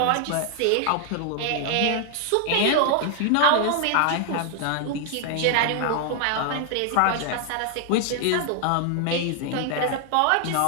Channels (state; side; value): different; both; correlation 0.00